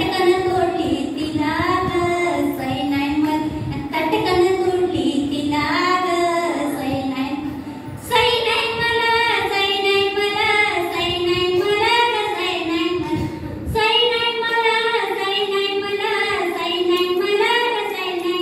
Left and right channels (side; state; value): both; identical; correlation 1.00